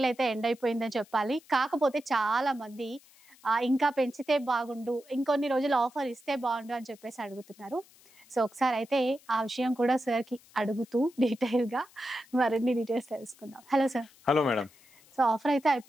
అయితే ఎండ్ అయిపోయిందని చెప్పాలి. కాకపోతే చాలా మంది ఇంకా పెంచితే బాగుండు, ఇంకొన్ని రోజులు ఆఫర్ ఇస్తే బాగుండు అని చెప్పేసి అడుగుతున్నారు. సో ఒకసారి అయితే ఆ విషయం కూడా సార్కి అడుగుతూ డీటెయిల్గా మరిన్ని డీటెయిల్స్ తెలుసుకుందాం. Hello sir. Hello madam. So offer అయితే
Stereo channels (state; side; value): noise; left; hiss, 27 dB below the sound